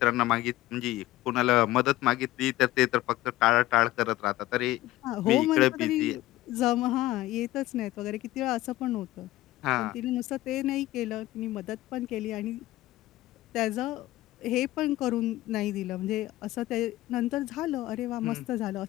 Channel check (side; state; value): right; quieter; 16.4 dB